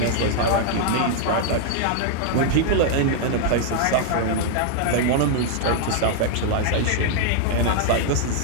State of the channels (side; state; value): both; different; correlation 0.00